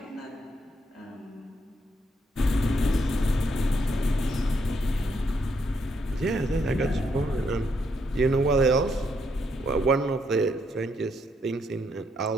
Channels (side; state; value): both; normal; correlation 0.76